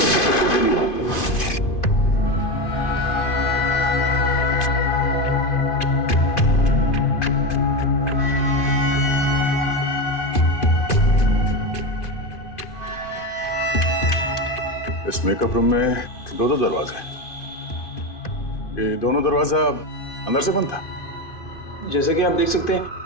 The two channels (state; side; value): late; right; 2.5 ms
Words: से गोली मारी। इस मेकअप रूम में दो दरवाजे हैं। ये दोनों दरवाजा अंदर से बंद था। जैसे कि आप देख सकते हैं